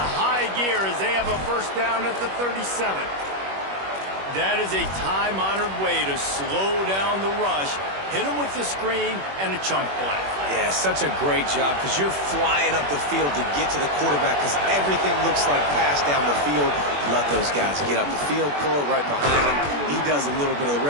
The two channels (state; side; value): late; left; 21 ms